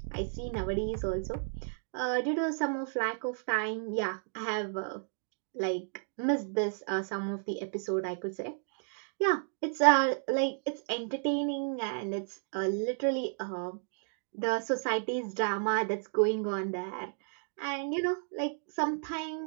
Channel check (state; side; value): silent; left; digital silence